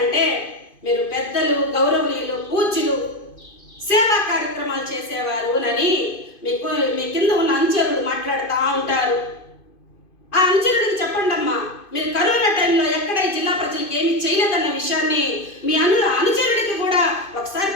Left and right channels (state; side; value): late; right; 2.5 ms